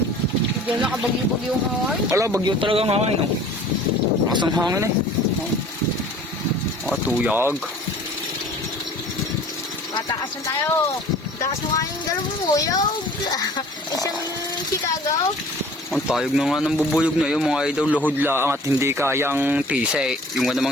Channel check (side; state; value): both; normal; correlation 0.48